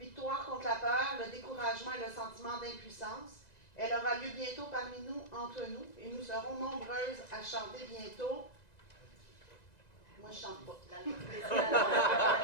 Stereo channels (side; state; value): right; late; 1.9 ms